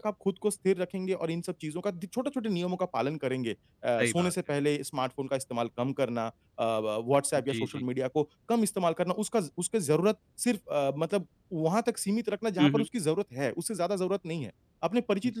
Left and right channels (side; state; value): both; identical; correlation 1.00